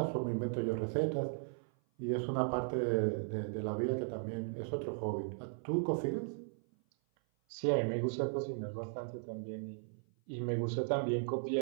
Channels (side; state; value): left; silent; 53 dB below the other